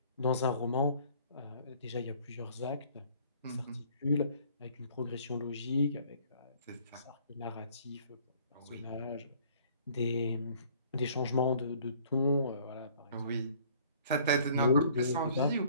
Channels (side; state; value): both; inverted; correlation -0.56